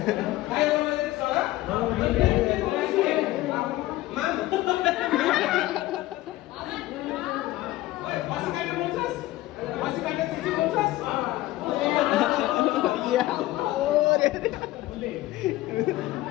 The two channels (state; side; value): quieter; right; 16.8 dB